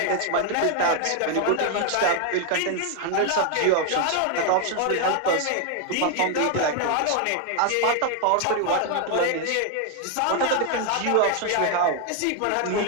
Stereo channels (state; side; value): different; both; correlation 0.01